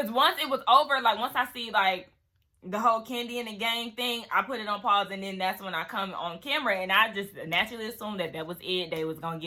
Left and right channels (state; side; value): identical; both; correlation 1.00